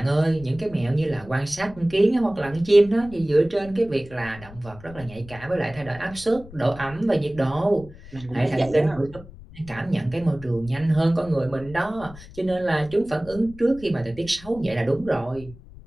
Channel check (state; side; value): noise; left; rumble, 18 dB below the sound